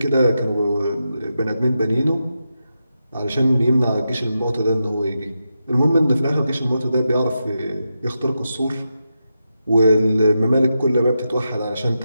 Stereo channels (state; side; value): inverted; both; correlation -0.88